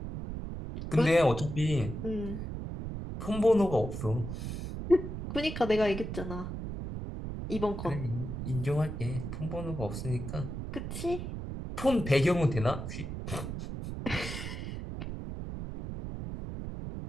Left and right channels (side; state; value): right; noise; rumble, 6 dB below the sound